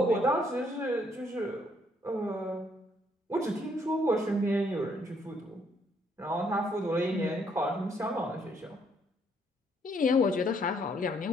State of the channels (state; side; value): normal; both; correlation 0.69